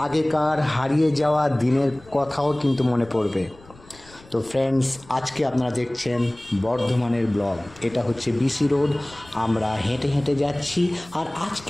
আগেকার হারিয়ে যাওয়া দিনের কথাও কিন্তু মনে পড়বে। তো ফ্রেন্ডস, আজকে আপনারা দেখছেন বর্ধমানের ব্লগ। এটা হচ্ছে বিসি রোড। আমরা হেঁটে হেঁটে যাচ্ছি, আর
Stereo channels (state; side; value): noise; left; rumble, 23 dB below the sound